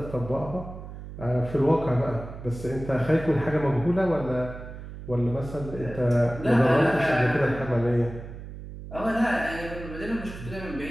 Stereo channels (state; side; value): noise; right; hum, 12 dB below the sound